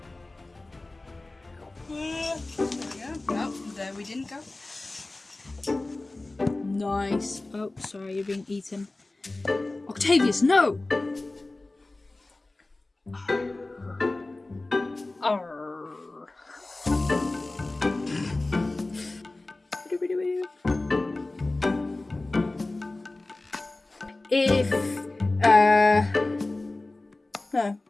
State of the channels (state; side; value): quieter; right; 3.0 dB